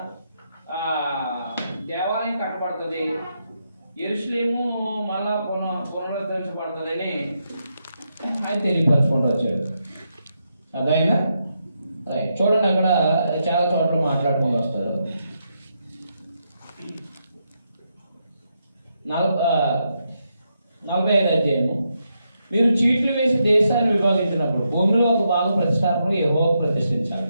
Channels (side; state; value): both; inverted; correlation -0.82